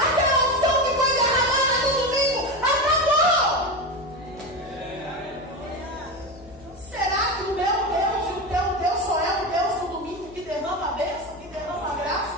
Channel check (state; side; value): noise; left; hum, 22 dB below the sound